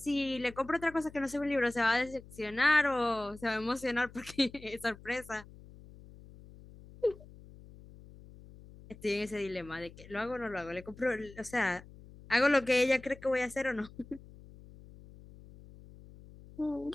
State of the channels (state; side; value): noise; left; hum, 20 dB below the sound